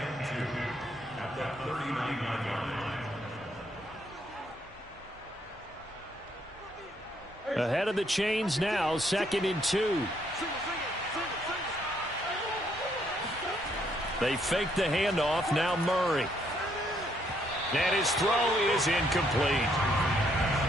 2 at the 39-yard line. Ahead of the chains now, 2nd and 2. They fake the handoff. Now Murray. And his throw is incomplete.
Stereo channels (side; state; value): both; normal; correlation 0.71